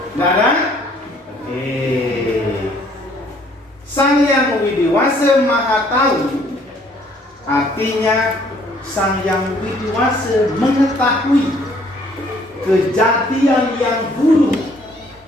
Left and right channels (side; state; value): both; normal; correlation 0.61